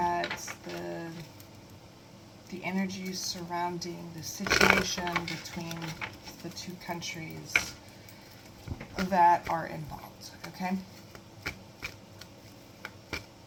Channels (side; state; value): both; identical; correlation 1.00